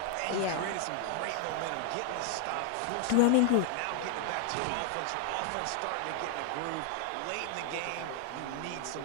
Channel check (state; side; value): different; both; correlation 0.00